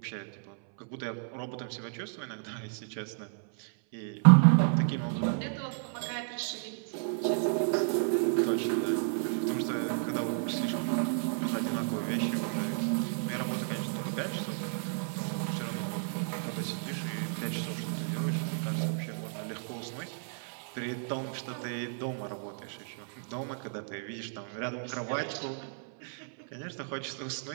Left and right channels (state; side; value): silent; left; 56 dB below the other